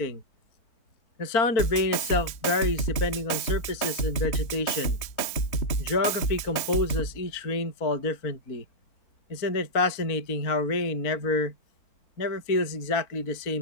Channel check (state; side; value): late; right; 3.3 ms